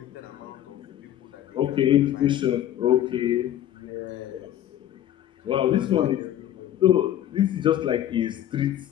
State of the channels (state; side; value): quieter; right; 11.8 dB